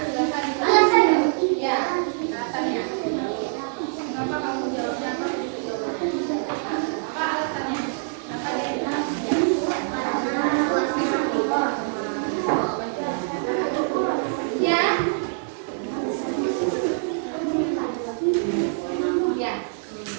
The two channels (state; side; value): silent; left; digital silence